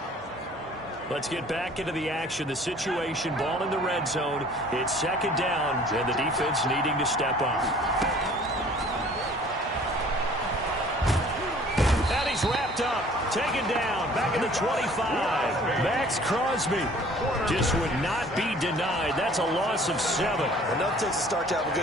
Let's get back into the action. The situation, ball in the red zone. It's 2nd down, and the defense needing to step up. And he's wrapped up, taken down, back at the 25. Max Crosby just would not be denied. That's a loss of 7. Enough takes a start to have a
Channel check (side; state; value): both; normal; correlation 0.52